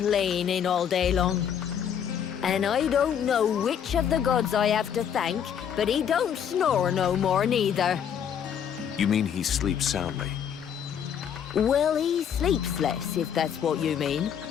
all day long. And I don't know which of the gods I have to thank, but he don't snore no more neither. You mean he sleeps soundly? Well, he sleeps less, if that's what you mean.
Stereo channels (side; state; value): right; quieter; 8.4 dB